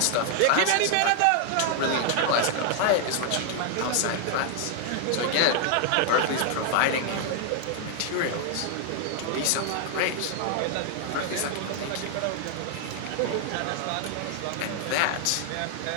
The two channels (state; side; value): different; both; correlation 0.00